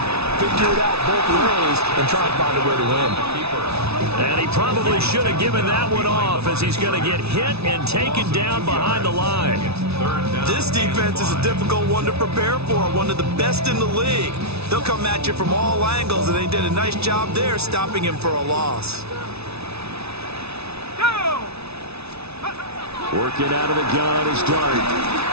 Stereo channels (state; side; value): late; left; 0.80 ms